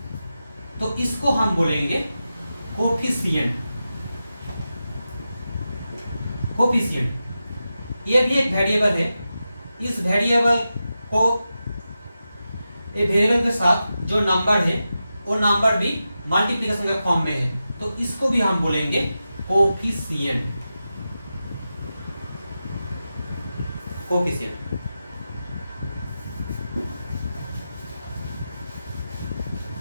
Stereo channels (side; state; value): both; inverted; correlation -0.91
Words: तो इसको हम बोलेंगे कोफिशिएंट। कोफिशिएंट ये भी एक वेरिएबल है, इस वेरिएबल को वेरिएबल के साथ जो नंबर है वो नंबर भी मल्टीप्लिकेशन के फॉर्म में है तो इसको भी हम बोलेंगे कोफिशिएंट।